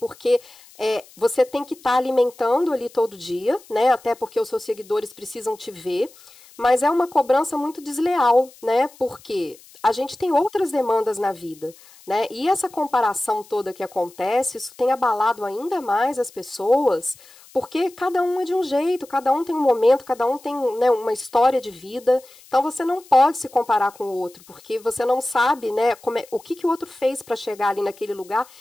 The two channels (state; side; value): noise; left; hiss, 24 dB below the sound